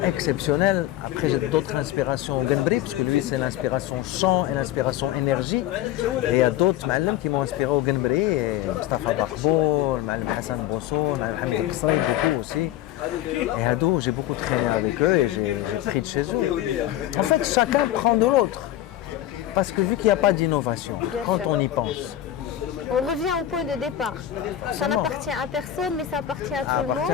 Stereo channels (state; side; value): quieter; right; 12.7 dB